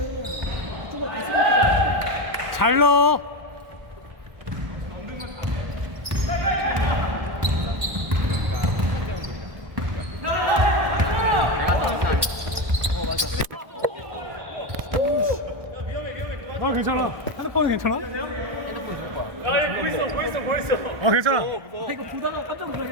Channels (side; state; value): left; late; 1.2 ms